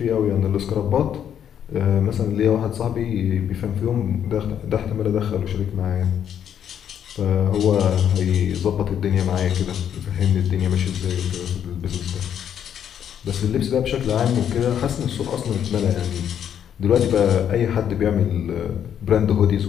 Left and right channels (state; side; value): quieter; right; 9.2 dB